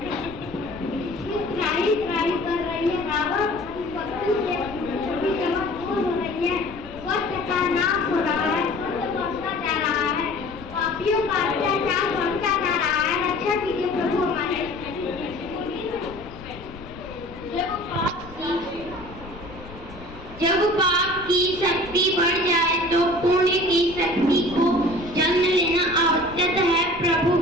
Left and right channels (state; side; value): noise; left; rumble, 16 dB below the sound